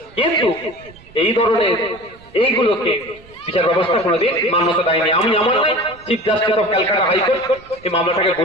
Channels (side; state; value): right; noise; rumble, 24 dB below the sound